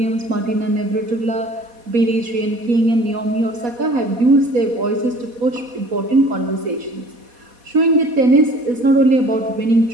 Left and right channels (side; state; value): left; late; 4.1 ms